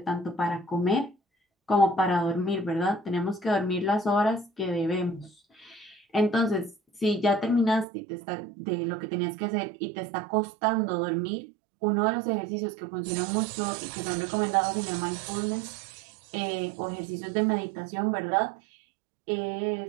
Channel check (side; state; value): left; drops out; at 7.9 s